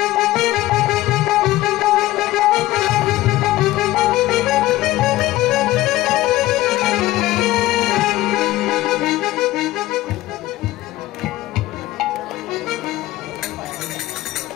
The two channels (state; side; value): quieter; right; 16.7 dB